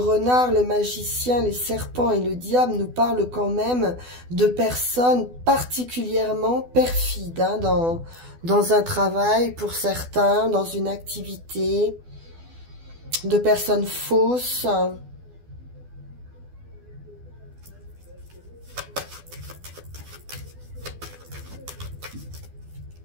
le magicien, les serpents et le diable nous parlent quand même de personnes particulièrement perfides hein, dans un travail pour certains, dans une activité, de personnes fausses.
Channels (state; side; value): late; left; 12 ms